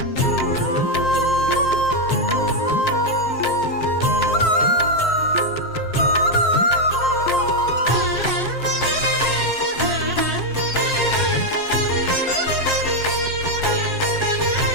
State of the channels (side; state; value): right; late; 7.6 ms